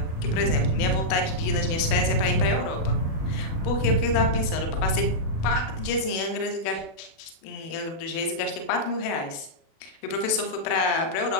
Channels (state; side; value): late; right; 37 ms